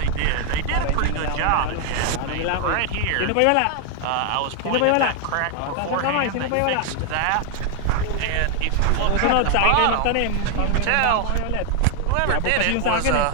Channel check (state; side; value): different; both; correlation 0.00